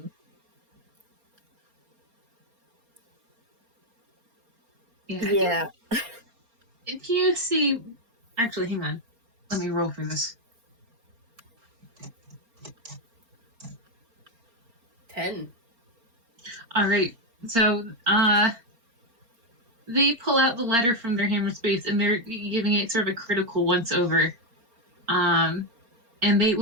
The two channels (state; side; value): late; left; 4.3 ms